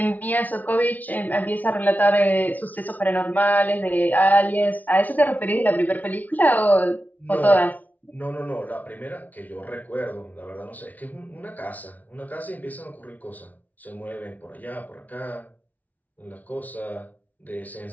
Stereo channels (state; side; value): late; right; 0.077 ms